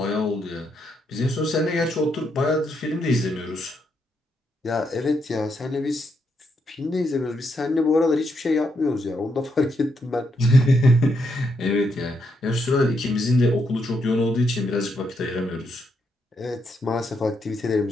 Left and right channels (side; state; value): both; normal; correlation 0.79